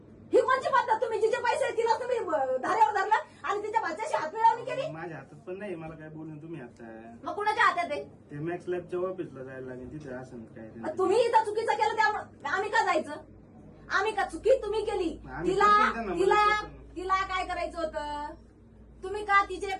ही कोणची पद्धत? तुम्ही जिचे पैसे आहेत तिला तुम्ही धाऱ्यावर धरलं आणि तिच्या भाच्याशी हातमिळवणी केली. माझ्या हातात पण नाही मला काय बोलून तुम्ही आता मग कुणाच्या हातात आहे? ते मॅक्स लॅबच्या ऑफिसला जायला लागेल तिथे असं काय मग तुम्ही इथं चुकीचं केलं त्यामुळे आम्ही का जायचं? आम्ही का चुकी तुम्ही केली? आम्ही तिला करतोय त्यांना, तिला मदत करतो. तिला काय करायचं होतं? तुम्ही का तिचे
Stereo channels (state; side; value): identical; both; correlation 1.00